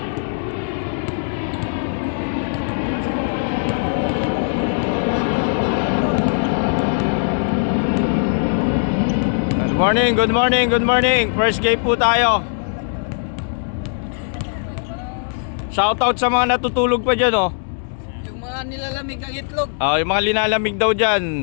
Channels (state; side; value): silent; right; digital silence